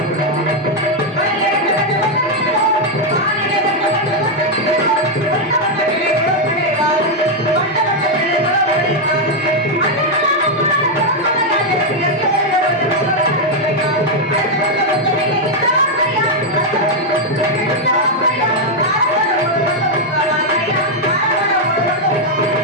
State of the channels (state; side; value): normal; both; correlation 0.00